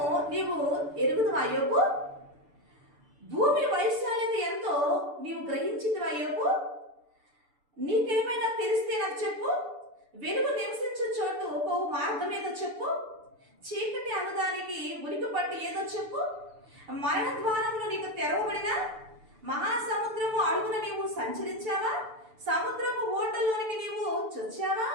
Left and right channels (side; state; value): left; late; 6.9 ms